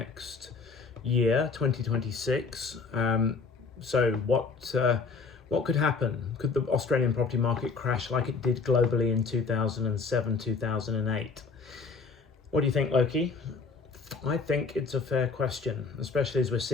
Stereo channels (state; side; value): quieter; right; 4.6 dB